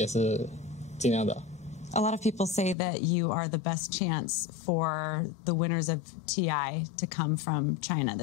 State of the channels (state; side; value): drops out; right; at 2.8 s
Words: 是尽量的。A lot of people say that you are the best chance for the winners of TI to come from China